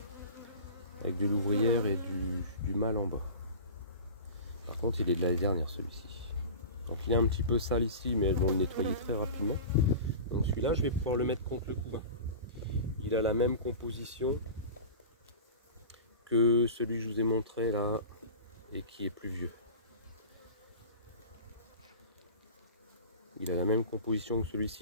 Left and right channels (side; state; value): both; inverted; correlation -0.34